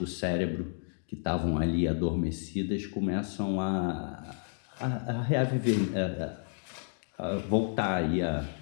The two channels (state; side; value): silent; right; digital silence